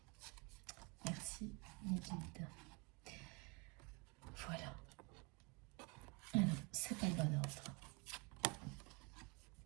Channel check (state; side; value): quieter; left; 29.6 dB